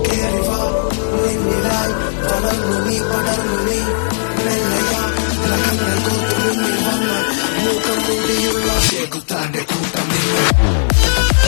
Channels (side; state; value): right; silent; digital silence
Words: കേറിവാ നിന്നിലായി വളർന്നു നീ പടർന്നു നീ മെല്ലയാ നഖങ്ങൾ കോർത്തു മുന്നിൽ വന്ന് മുഖം മൂടിയുള്ള ശേഖുത്താന്റെ കൂട്ടം നീ